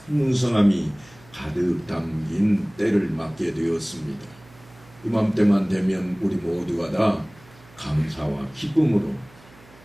풍성함이 가득 담긴 때를 맞게 되었습니다. 이맘때만 되면 우리 모두가 다 감사와 기쁨으로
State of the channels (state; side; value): noise; right; hum, 25 dB below the sound